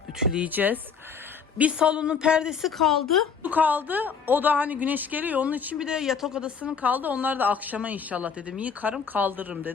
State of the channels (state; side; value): quieter; right; 6.1 dB